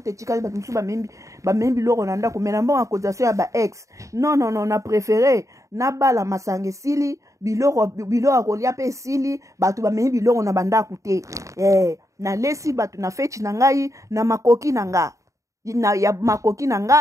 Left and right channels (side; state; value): left; late; 0.15 ms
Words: tetikali bato msuba membi biloko na ndako mena mbongo accusation ya ba ex non na préféré na bala masange sili biloko kolia pe sili bato ba membi biloko na bandako te na lesi bato na feti na ngai na makoki na nga ya makoki na